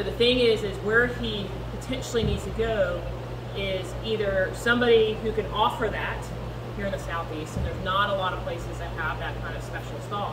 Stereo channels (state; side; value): identical; both; correlation 1.00